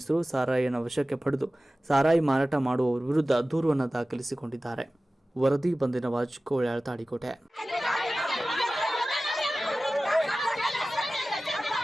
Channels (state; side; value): normal; both; correlation 0.96